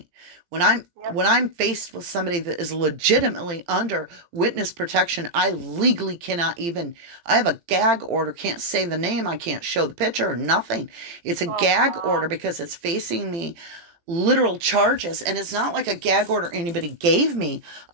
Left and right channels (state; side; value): late; left; 18 ms